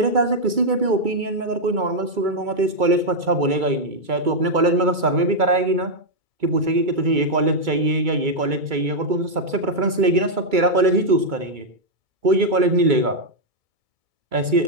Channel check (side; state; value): left; late; 2.3 ms